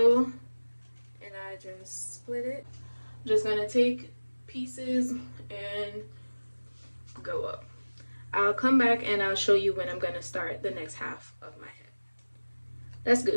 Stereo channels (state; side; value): inverted; both; correlation -1.00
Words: and I just split it. I'm just gonna take pieces and go up. I'll come back and I'll show you when I'm gonna start the next half of my head. Let's